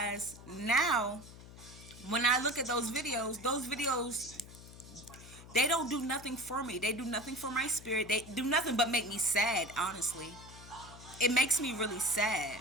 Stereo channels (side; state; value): left; noise; hum, 17 dB below the sound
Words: now, when I look at those videos, they don't do nothing for me. They do nothing for my spirit. They do nothing but make me sad, honestly. It makes me really sad